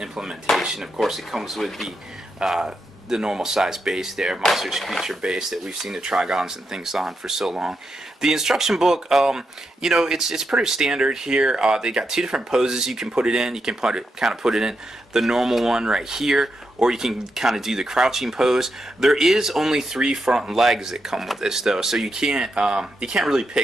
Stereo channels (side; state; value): both; normal; correlation 0.84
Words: Of course, it comes with the normal size base there, Monsters Creature base that we've seen the Trigons and things on for so long. The instruction book, it's pretty standard here. They got two different poses you can put it in. You can kind of put it in the normal one right here, or you can kind of do the crouching pose. There is only 3 front legs that come with this though, so you can't really